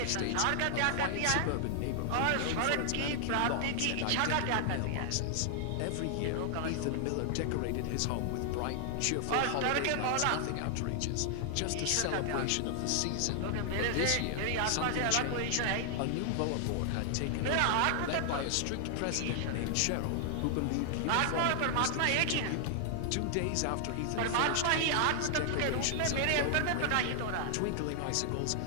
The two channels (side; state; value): both; different; correlation 0.00